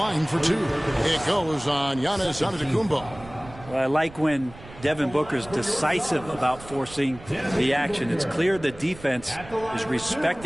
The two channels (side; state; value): right; noise; rumble, 18 dB below the sound